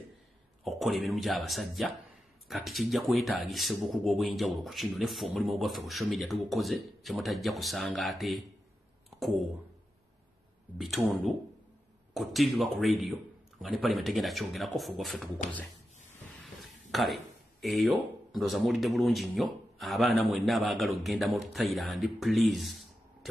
okukola emirimu gy'abasajja kati kijja kwetaagisa obukugu obw'enjawulo ku kino neffe omulimu gwaffe ku social media tugukoze kyemutajja kusanga ate ku bitundu ku TV ba ku radio nga ne parliament egenda kyongerako ffe gwaffe tugukoze kale eyo ndoza muwulidde bulungi nnyo abaana mwenna abaagala okugenda mu Thailand please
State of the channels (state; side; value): normal; both; correlation 0.90